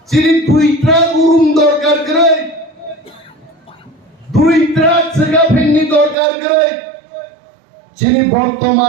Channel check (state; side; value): drops out; left; at 6.2 s